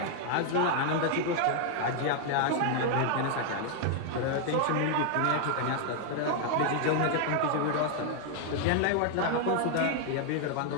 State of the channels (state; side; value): different; both; correlation 0.00